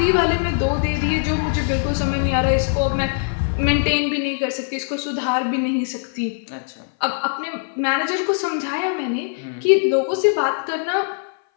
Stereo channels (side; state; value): right; silent; 57 dB below the other